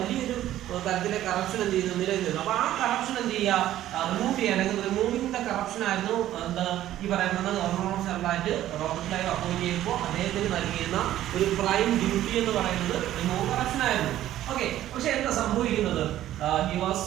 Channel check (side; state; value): left; quieter; 13.2 dB